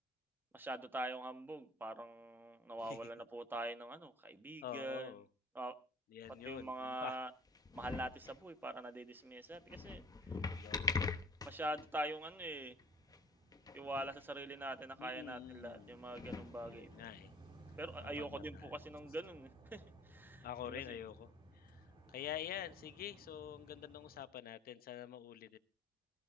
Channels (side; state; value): both; normal; correlation 0.47